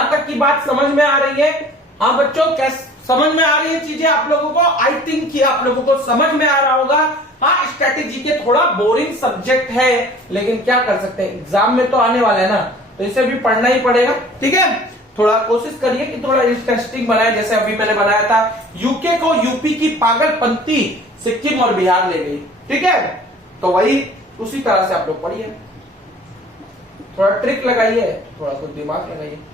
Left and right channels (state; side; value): normal; both; correlation 0.48